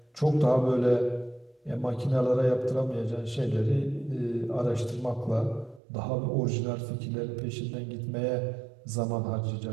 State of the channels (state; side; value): drops out; left; at 5.8 s